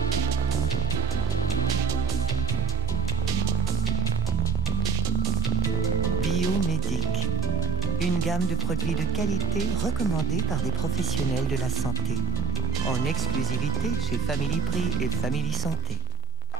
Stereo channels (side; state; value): left; quieter; 3.8 dB